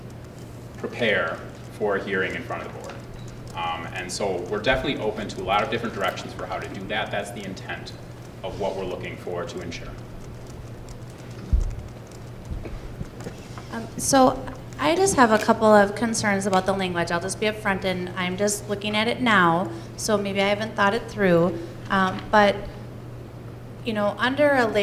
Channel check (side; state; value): both; identical; correlation 1.00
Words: prepare for a hearing in front of the board. And so we're definitely open to a lot of different directions for how to do that. That's the intent of what we're looking for to ensure. So I just have a couple of concerns about the language. I'll just be upfront, and I'm just looking at it now, so maybe I haven't thought it through. But you know, under a